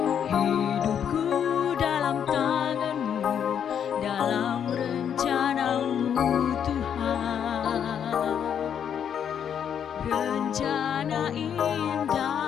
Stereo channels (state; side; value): quieter; right; 8.5 dB